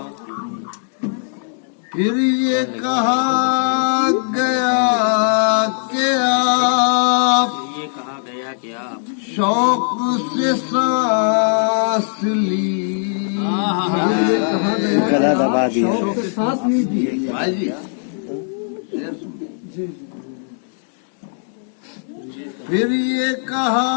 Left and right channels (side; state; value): right; silent; digital silence